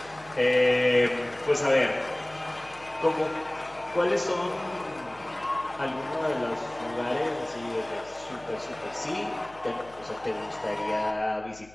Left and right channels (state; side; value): noise; left; hum, 24 dB below the sound